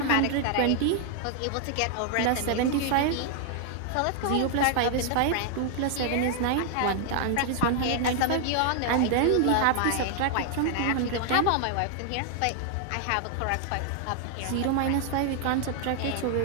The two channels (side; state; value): both; different; correlation 0.00